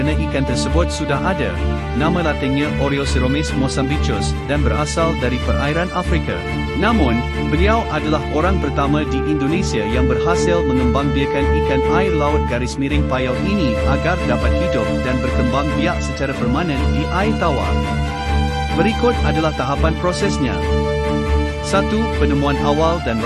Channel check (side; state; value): both; identical; correlation 1.00